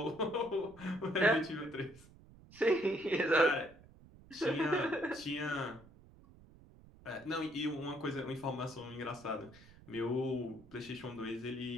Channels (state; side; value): noise; right; rumble, 22 dB below the sound